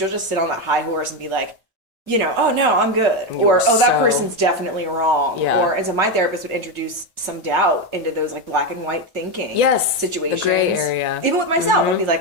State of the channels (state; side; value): normal; both; correlation 0.10